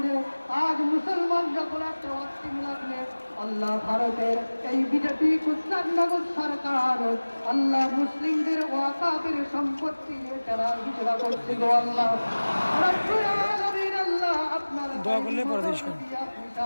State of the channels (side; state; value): both; inverted; correlation -1.00